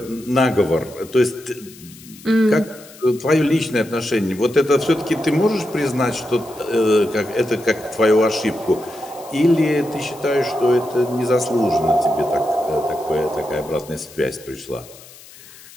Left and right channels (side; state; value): left; noise; hiss, 21 dB below the sound